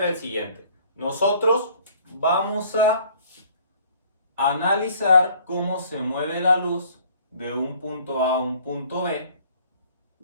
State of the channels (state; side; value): inverted; both; correlation -0.55